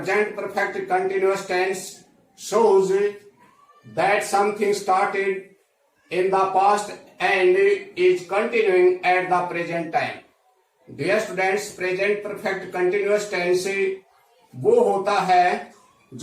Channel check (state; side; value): identical; both; correlation 1.00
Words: perfect continuous tense shows that something started in the past and is continuing at the present time. Dear students present perfect continuous tense वो होता है